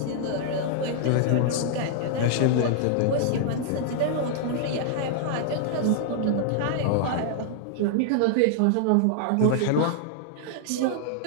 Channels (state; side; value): different; both; correlation -0.01